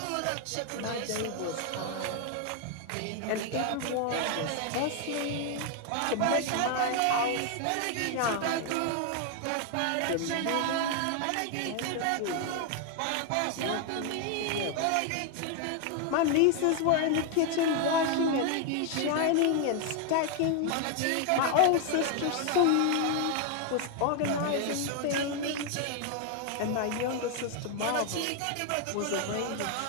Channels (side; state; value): both; different; correlation 0.00